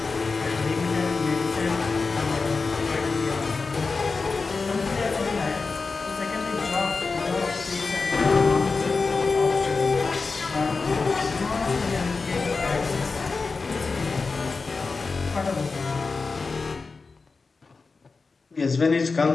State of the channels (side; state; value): right; quieter; 4.3 dB